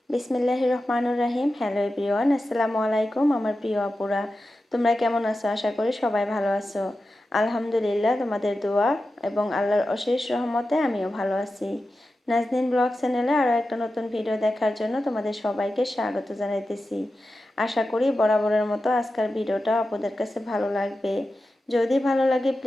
বিসমিল্লাহির রহমানুর রাহিম। হ্যালো এভরিওয়ান, আসসালামু আলাইকুম আমার প্রিয় আপুরা। তোমরা কেমন আছো? আশা করি সবাই ভালো আছো। আলহামদুলিল্লাহ, তোমাদের দোয়া এবং আল্লাহর অশেষ রহমতে আমিও ভালো আছি। নাজনীন ব্লগ চ্যানেলে আরও একটা নতুন ভিডিও দেখার জন্য তোমাদের সবাইকে স্বাগত জানাইতেছি। আশা করি বরাবরের মতো আজকের ভিডিওটা আপনাদের কাছে ভালো লাগবে। যদি ভালো লাগে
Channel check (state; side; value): normal; both; correlation 0.92